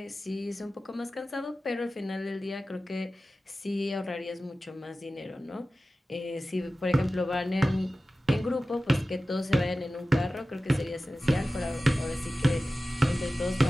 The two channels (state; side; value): normal; both; correlation 0.95